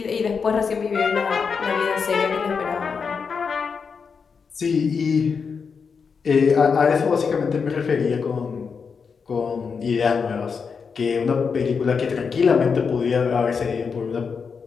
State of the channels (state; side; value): quieter; right; 5.7 dB